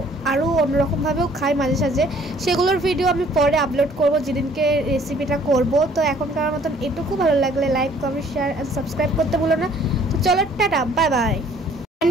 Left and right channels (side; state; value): both; normal; correlation 0.58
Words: আরও অন্যরকমভাবেও খাই মাঝে সাঝে, সেগুলোর ভিডিও আমি পরে আপলোড করব যেদিনকে রেসিপিটা করব। তো এখনকার মতন এটুকু, ভালো লাগলে like comment share and subscribe করতে ভুলো না। তো চলো tata, bye bye